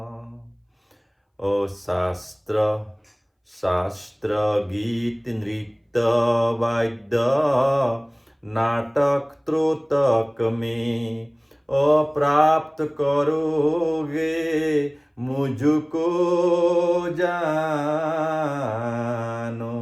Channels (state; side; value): identical; both; correlation 1.00